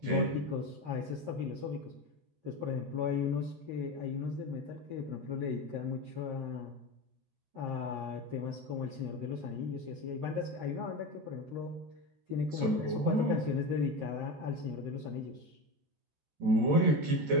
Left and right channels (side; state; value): left; late; 14 ms